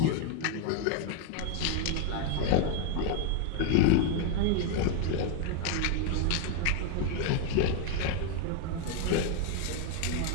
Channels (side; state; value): both; different; correlation 0.01